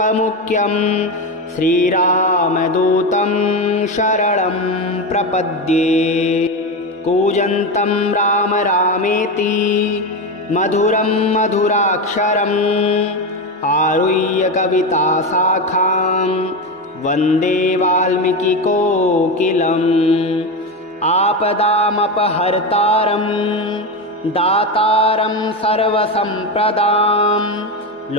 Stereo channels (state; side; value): normal; both; correlation 0.16